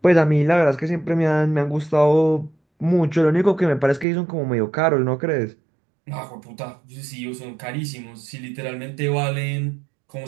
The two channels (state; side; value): drops out; left; at 4.0 s